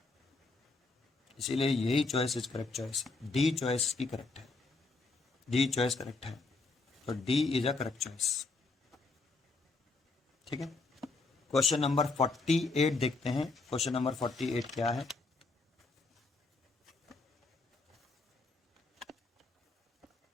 इसीलिए यही choice is correct choice, D choice की करेक्ट है, डी चॉइस करेक्ट है, तो D is a correct choice. ठीक है, क्वेश्चन नंबर 48 देखते हैं। क्वेश्चन नंबर 48 क्या है?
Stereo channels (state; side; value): quieter; right; 3.7 dB